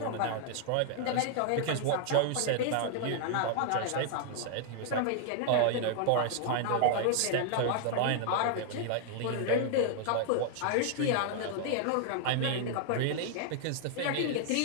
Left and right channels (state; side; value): different; both; correlation 0.00